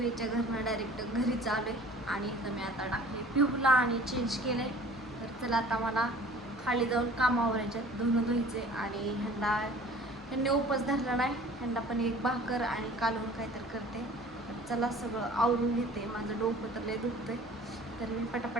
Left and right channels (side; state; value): both; normal; correlation 0.47